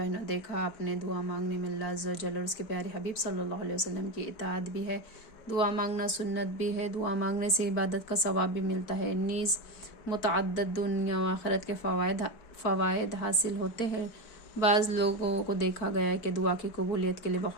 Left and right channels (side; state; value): right; late; 4.5 ms